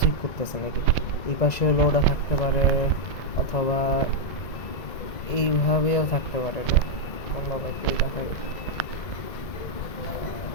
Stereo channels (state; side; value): late; right; 1.9 ms